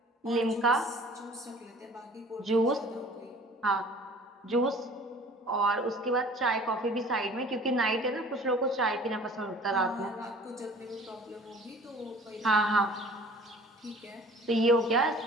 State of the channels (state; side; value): normal; both; correlation 0.48